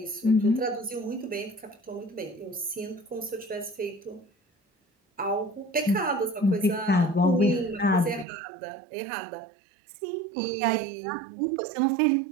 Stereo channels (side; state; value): left; drops out; at 8.2 s